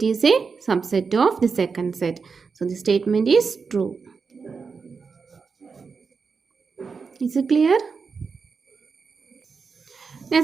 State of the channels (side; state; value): left; quieter; 5.2 dB